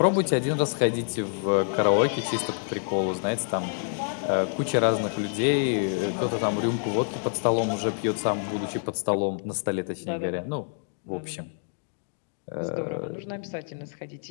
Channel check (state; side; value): silent; right; digital silence